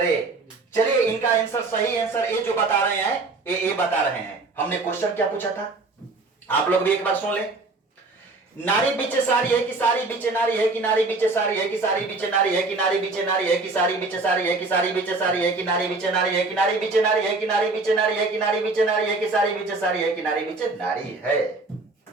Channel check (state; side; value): quieter; left; 3.5 dB